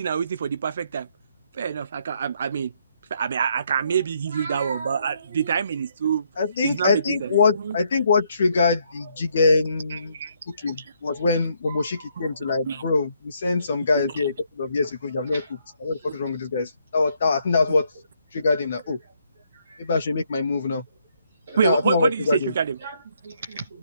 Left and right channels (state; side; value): inverted; both; correlation -0.72